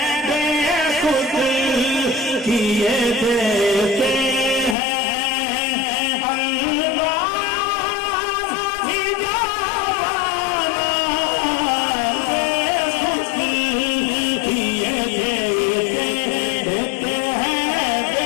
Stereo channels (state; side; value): drops out; right; at 4.8 s